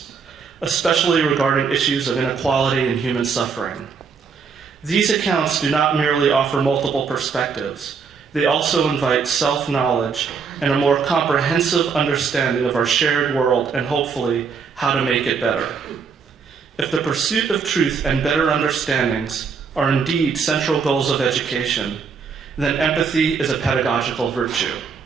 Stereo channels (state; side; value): quieter; left; 5.8 dB